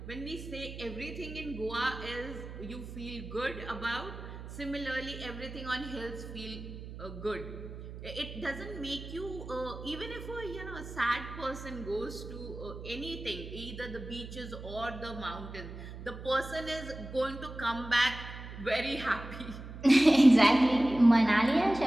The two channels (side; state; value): right; noise; hum, 11 dB below the sound